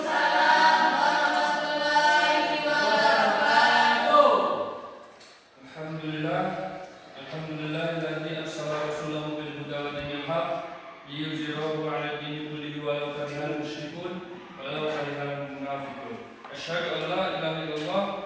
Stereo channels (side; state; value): both; identical; correlation 1.00